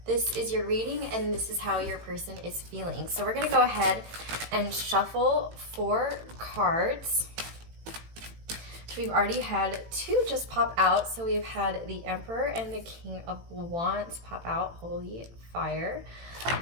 this is your reading and this is how your person is feeling. So we're going to go ahead and shuffle 4 cards. We've already had 2 just pop out. So we've had the Emperor and the King of Wands pop out. Holy fire.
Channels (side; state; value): left; late; 18 ms